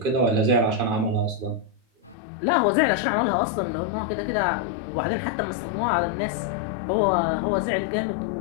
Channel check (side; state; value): right; drops out; at 2.1 s